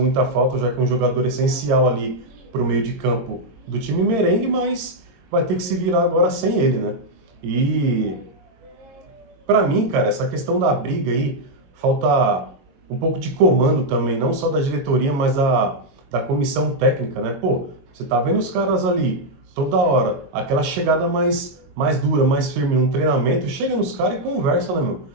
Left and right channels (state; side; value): late; left; 22 ms